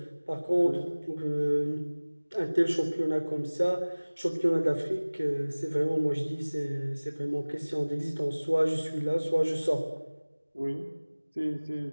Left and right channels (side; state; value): both; inverted; correlation -1.00